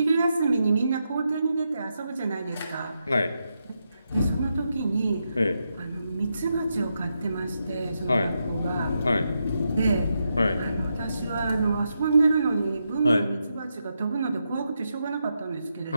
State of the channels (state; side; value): inverted; both; correlation -0.84